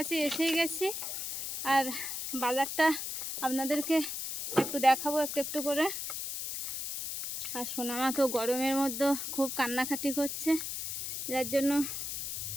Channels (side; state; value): left; noise; hiss, 4 dB below the sound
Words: এসেই গেছি। আর বাজারটা আপনাদেরকে একটু দেখাবো একটু একটু করে। আর সোনামা তো গরমের মধ্যে খুব কান্নাকাটি করছে, যার জন্য